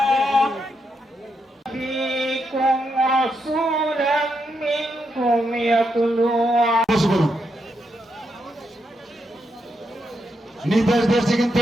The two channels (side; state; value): both; normal; correlation 0.82